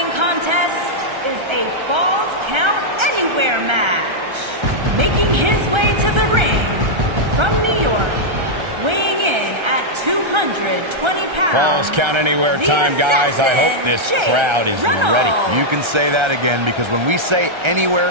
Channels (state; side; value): late; left; 1.3 ms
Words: contest is a Falls Count Anywhere match. Making his way to the ring from New York, weighing in at 220 pounds. Falls Count Anywhere time, guys. I hope this crowd is ready. You can say that again, because when we say